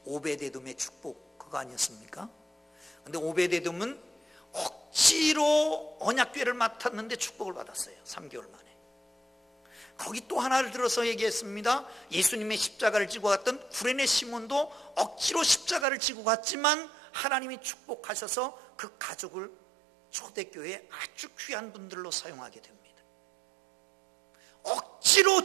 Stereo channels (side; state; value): left; drops out; at 15.9 s